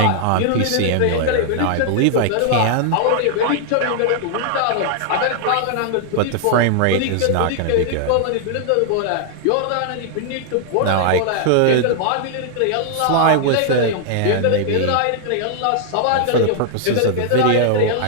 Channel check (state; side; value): different; both; correlation 0.00